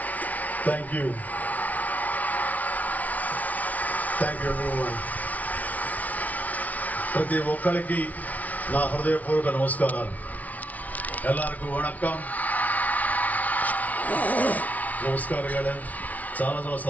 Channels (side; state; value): right; late; 0.072 ms